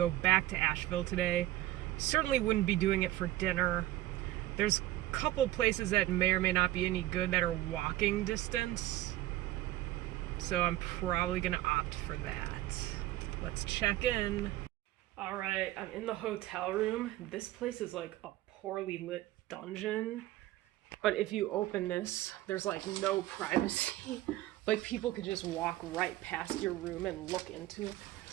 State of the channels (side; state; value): left; quieter; 15.6 dB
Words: back to Asheville today. Certainly wouldn't be doing it for dinner. There's a couple places that may or may not be any good that are walking distance. So I'm probably gonna opt for that. Let's check in. All right, I'm in the hotel room. This place is like a poorly lit dungeon. But if you open this, there's like no privacy. Like people could just walk right past your room and look into it.